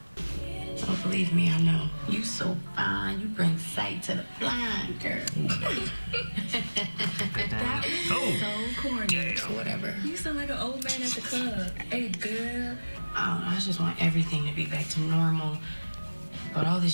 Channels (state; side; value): inverted; both; correlation -1.00